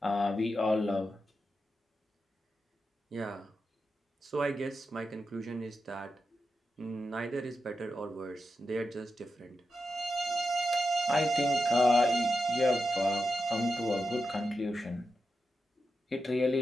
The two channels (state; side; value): normal; both; correlation 0.88